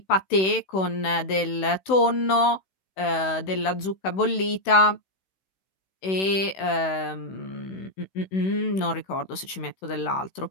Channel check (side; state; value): right; late; 16 ms